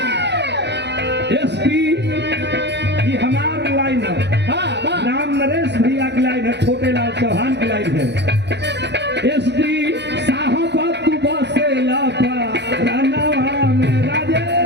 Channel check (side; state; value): left; late; 0.50 ms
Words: ये हमार लाइन है, राम नरेश भैया की लाइन है, छोटे लाल चौहान की लाइन है। एसडी साहब तू बसे लापा रानावा में